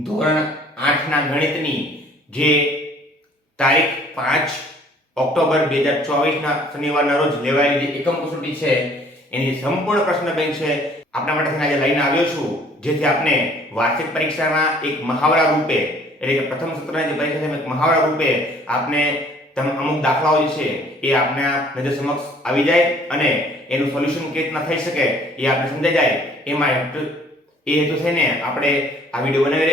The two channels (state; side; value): normal; both; correlation 0.56